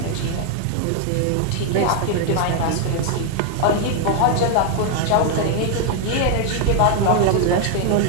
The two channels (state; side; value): different; both; correlation 0.00